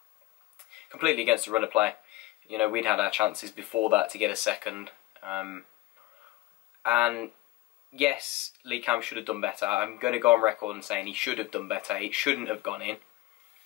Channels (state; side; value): quieter; right; 17.4 dB